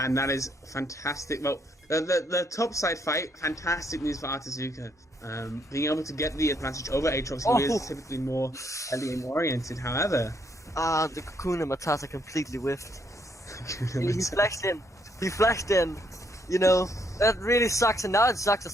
that is fantastic. Well, the top side fight, fantastic news for Artezuka. Being able to get the advantage over Aatrox, who is typically more early game oriented. However, the Kakuna Matata completely whiffed. He flashed in. He flashed in. You know, that really sucks, and now it sucks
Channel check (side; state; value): both; normal; correlation 0.72